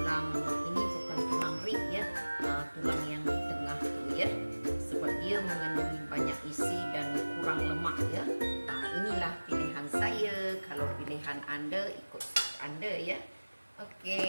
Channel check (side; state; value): both; inverted; correlation -1.00